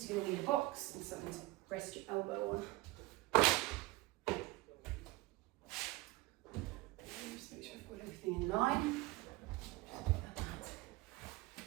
you're going to need a box and something to rest your elbow on. Just make sure I've got everything in line.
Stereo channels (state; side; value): quieter; left; 20.4 dB